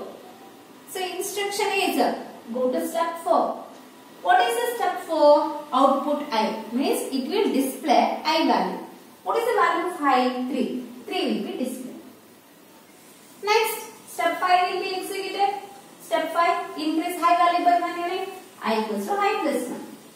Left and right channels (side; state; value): both; identical; correlation 1.00